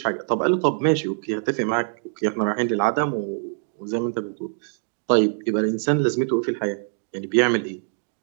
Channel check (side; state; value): left; silent; digital silence